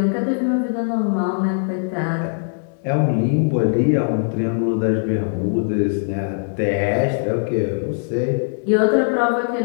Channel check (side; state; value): right; silent; digital silence